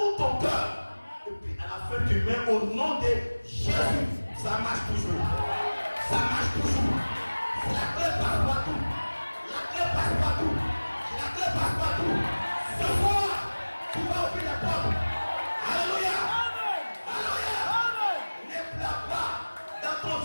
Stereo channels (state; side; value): inverted; both; correlation -1.00